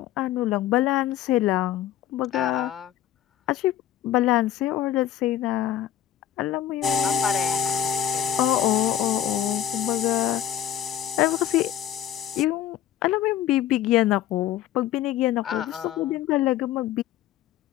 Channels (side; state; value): right; quieter; 11.3 dB